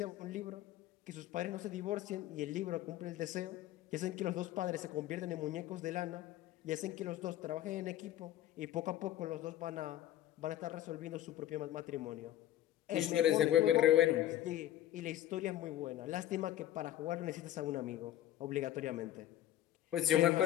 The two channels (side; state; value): right; quieter; 12.7 dB